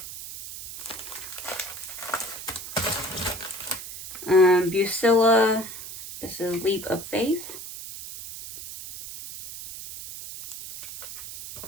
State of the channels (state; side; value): noise; right; hiss, 11 dB below the sound